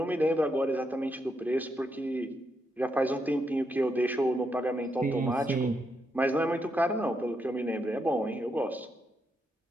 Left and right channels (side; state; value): both; normal; correlation 0.81